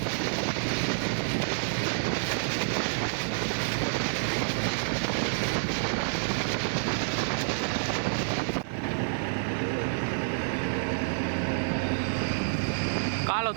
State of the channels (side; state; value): left; silent; 59 dB below the other